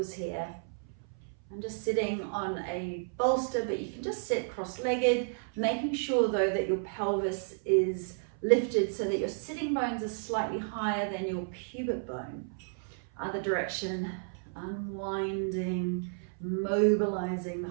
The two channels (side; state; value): left; silent; 56 dB below the other